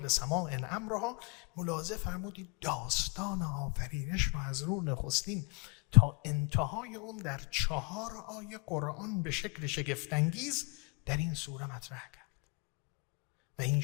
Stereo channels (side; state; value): right; quieter; 31.5 dB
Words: سماء امرها. ملاحظه فرمودید داستان آفرینش رو از رو نخستین تا انتهای اون در 4 آیه قرآن به شکل شگفت‌انگیز در این سوره مطرح کرد و این